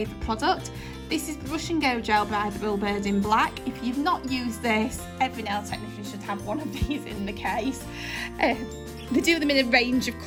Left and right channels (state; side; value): identical; both; correlation 1.00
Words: product. This is Brush and Go Gel by Thrillbird in black. If you've not used this, every nail technician should have one of these in the case. They do them in a range of